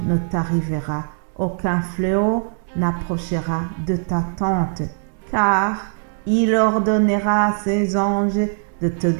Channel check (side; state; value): left; silent; digital silence